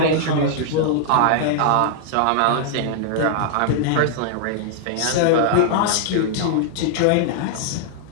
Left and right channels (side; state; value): both; different; correlation -0.01